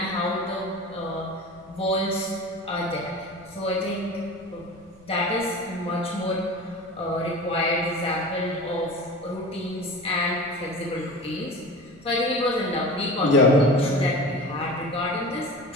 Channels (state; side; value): noise; left; rumble, 28 dB below the sound